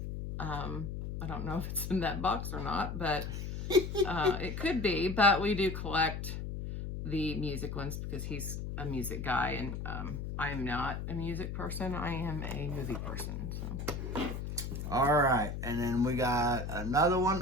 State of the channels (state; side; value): noise; left; hum, 5 dB below the sound